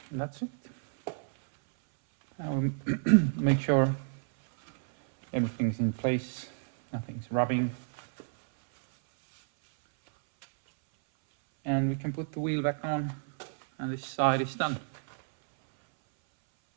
And that's it. Now make sure everything's in place, nothing's rubbing. And we can put the wheel back on, and this side is done.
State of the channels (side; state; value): left; silent; 58 dB below the other